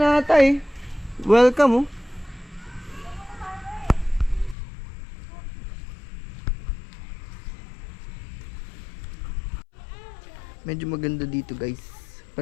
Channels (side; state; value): right; drops out; at 4.5 s